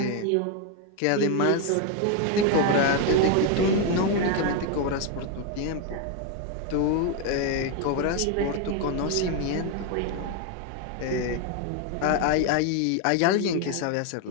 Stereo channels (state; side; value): different; both; correlation 0.01